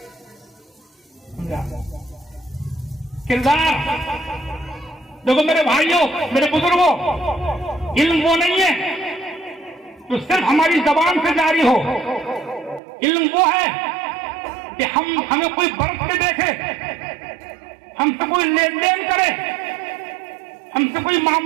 किरदार देखो मेरे भाइयों, मेरे बुजुर्गों, इल्म वो नहीं है जो सिर्फ हमारी जबान से जारी हो। इल्म वो है कि हमें कोई बरत के देखे, हमसे कोई लेन देन करे, हमसे कोई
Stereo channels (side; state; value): left; drops out; at 12.8 s